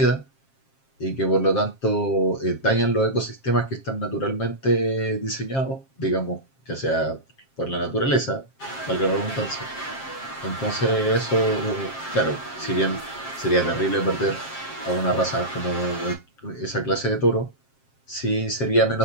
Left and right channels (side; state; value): right; late; 7.5 ms